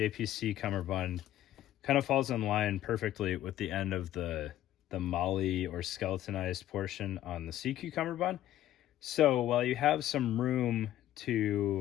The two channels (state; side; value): quieter; right; 13.1 dB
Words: cummerbund kind of falls in line perfectly with the end of the molly or skeletonized portion on the SEACU cummerbund. So while you have some room